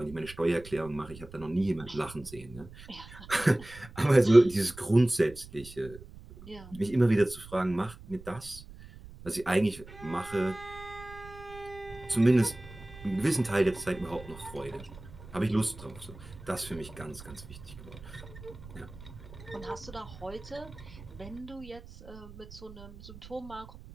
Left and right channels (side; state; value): right; noise; rumble, 17 dB below the sound